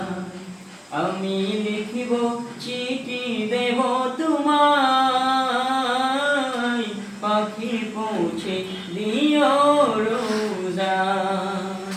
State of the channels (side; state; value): both; identical; correlation 1.00